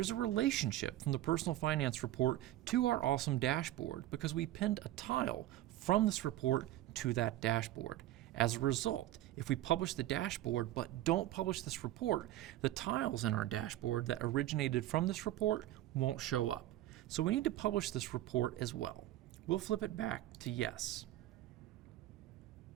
a relationship from the personal finance report to our awesome dashboard because we pinned a tile from this report to that dashboard. As a result, if we publish the dashboard but don't publish this report, the tiles in our dashboard that originated from this report won't show up. So we need to publish this report as well. We'll flip it back to yes.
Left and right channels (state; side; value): quieter; left; 14.6 dB